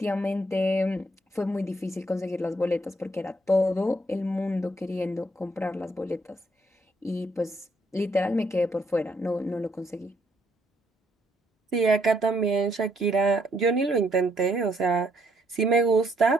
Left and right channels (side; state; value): both; normal; correlation 0.71